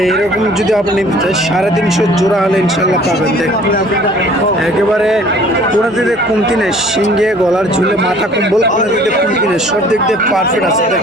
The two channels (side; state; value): both; normal; correlation 0.53